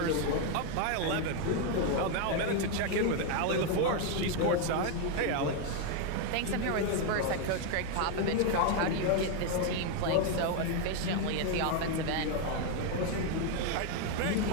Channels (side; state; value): both; different; correlation 0.01